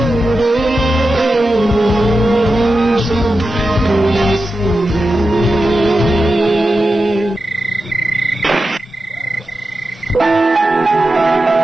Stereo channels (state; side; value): normal; both; correlation 0.91